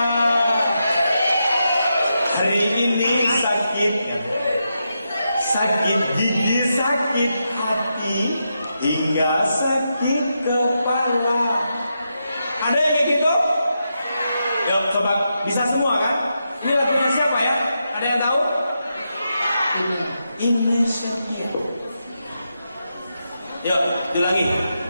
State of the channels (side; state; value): both; inverted; correlation -0.85